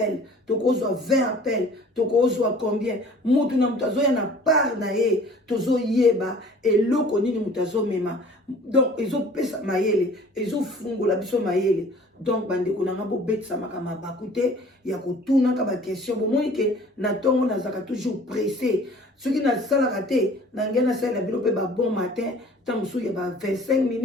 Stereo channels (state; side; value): normal; both; correlation 0.49